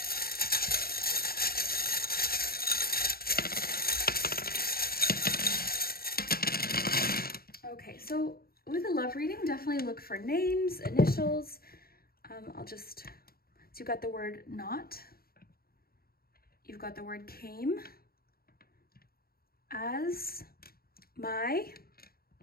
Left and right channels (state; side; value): late; right; 0.44 ms